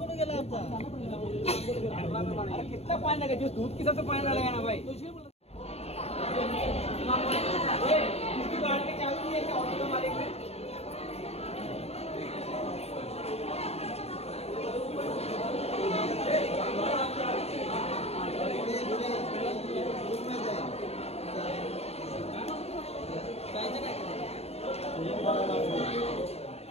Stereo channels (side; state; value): right; late; 0.30 ms